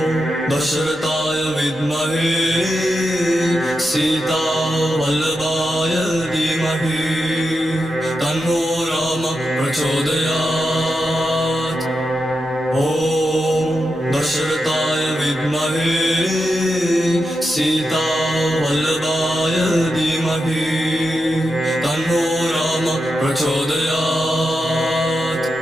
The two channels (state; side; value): normal; both; correlation 0.87